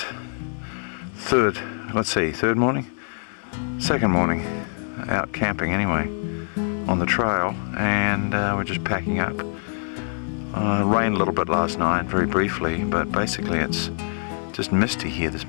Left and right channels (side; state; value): right; silent; 62 dB below the other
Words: third morning? Second morning. Out camping anyway. On the trail. And we're just packing up. Rained a little bit last night, very briefly. But basically it's just misty here this